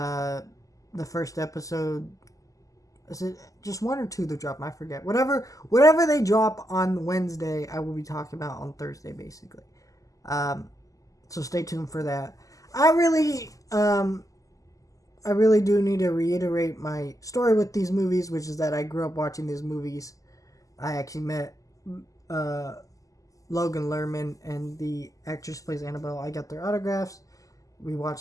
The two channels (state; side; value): late; right; 0.16 ms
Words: first episode. Is it just one or two that drop? I forget. Whatever they drop on Wednesday, I will be talking about on Thursday, basically. So stay tuned for that. I really do need to reiterate my story with these movies, which is that I grew up watching these movies. I actually met Logan Lerman and the actress who plays Annabelle. I got their autographs. We